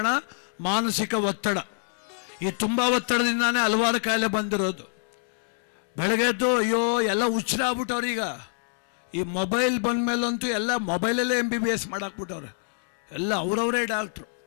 ಮಾನಸಿಕ ಒತ್ತಡ. ಈ ತುಂಬ ಒತ್ತಡದಿಂದಾನೇ ಹಲವಾರು ಕಾಯಿಲೆ ಬಂದಿರೋದು. ಬೆಳಗ್ಗೆದ್ದು ಅಯ್ಯೋ ಎಲ್ಲ ಹುಚ್ಚರಾಗ್ಬಿಟ್ಟವ್ರು. ಈಗ ಈ ಮೊಬೈಲ್ ಬಂದ ಮೇಲಂತೂ ಎಲ್ಲ ಮೊಬೈಲಲ್ಲೇ MBBS ಮಾಡಾಕ್ಬಿಟ್ಟವ್ರೆ. ಎಲ್ಲ ಅವರವರೇ ಡಾಕ್ಟ್ರು.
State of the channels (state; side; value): silent; right; 61 dB below the other